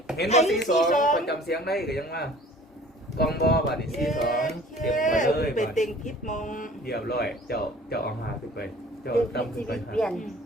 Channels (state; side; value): normal; both; correlation 0.49